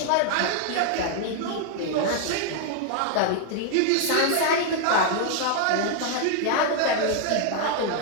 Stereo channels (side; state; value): both; different; correlation 0.00